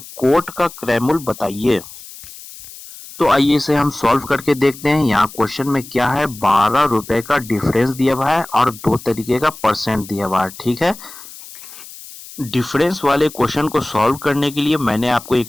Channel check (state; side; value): noise; left; hiss, 16 dB below the sound